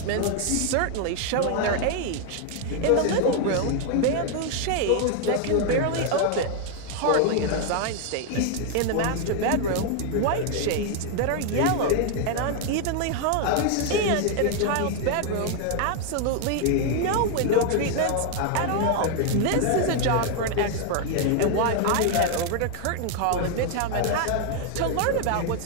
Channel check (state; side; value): different; both; correlation 0.00